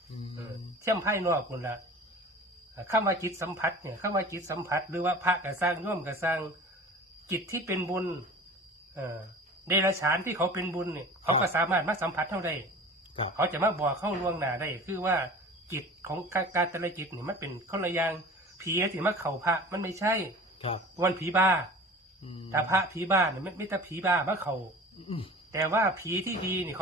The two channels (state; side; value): normal; both; correlation 0.40